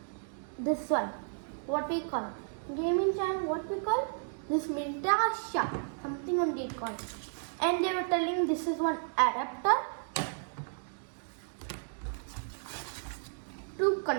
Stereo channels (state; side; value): silent; left; digital silence